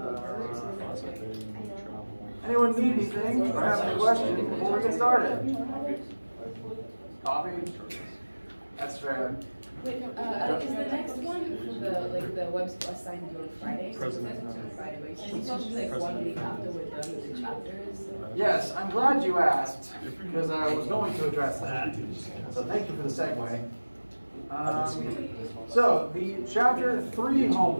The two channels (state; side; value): inverted; both; correlation -1.00